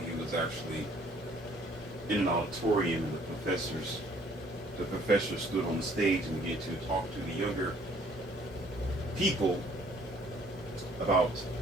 was actually in an auditorium and the professor stood on the stage and began to talk to the younger people about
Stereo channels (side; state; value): both; normal; correlation 0.60